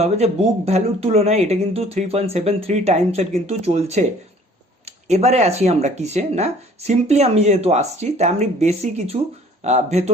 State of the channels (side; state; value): both; normal; correlation 0.54